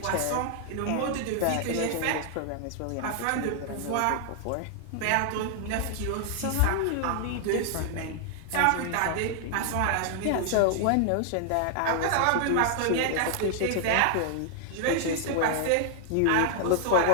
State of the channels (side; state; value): both; different; correlation 0.00